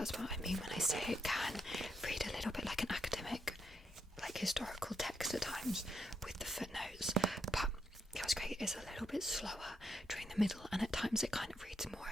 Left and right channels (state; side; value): normal; both; correlation 0.80